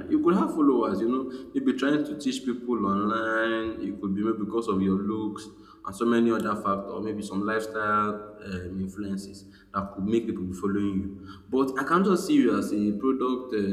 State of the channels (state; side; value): identical; both; correlation 1.00